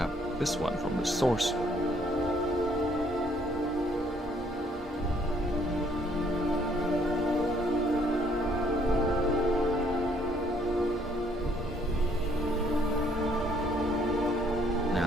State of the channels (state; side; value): normal; both; correlation 0.65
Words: this one from the source.